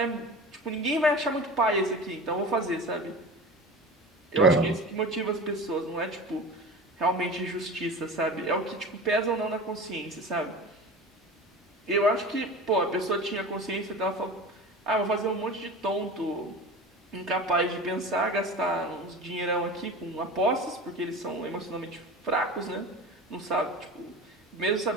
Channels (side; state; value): both; normal; correlation 0.33